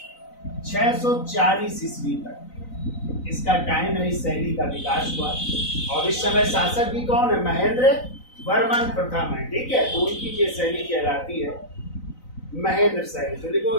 640 ईस्वी तक इसका टाइम है। इस शैली का विकास हुआ, और इस समय शासक भी कौन है? महेंद्र वर्मन प्रथम है। ठीक है, तो उनकी ये शैली कहलाती है महेंद्र शैली। तो देखो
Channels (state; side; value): late; right; 3.9 ms